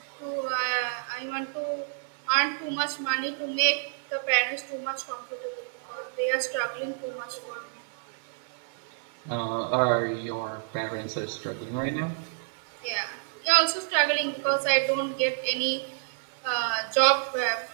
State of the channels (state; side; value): silent; left; digital silence